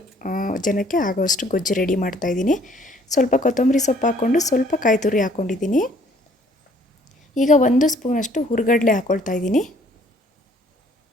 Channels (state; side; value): normal; both; correlation 0.60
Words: ಜನಕ್ಕೆ ಆಗೋಷ್ಟು ಗೊಜ್ಜು ರೆಡಿ ಮಾಡ್ತಾಯಿದ್ದೀನಿ. ಸ್ವಲ್ಪ ಕೊತ್ತಂಬರಿ ಸೊಪ್ಪು ಹಾಕ್ಕೊಂಡು ಸ್ವಲ್ಪ ಕಾಯಿ ತುರಿ ಹಾಕ್ಕೊಂಡಿದ್ದೀನಿ. ಈಗ 1 ಸ್ಪೂನಷ್ಟು ಹುರ್ಗಡ್ಲೆ ಹಾಕ್ಕೊಳ್ತಾ ಇದ್ದೀನಿ.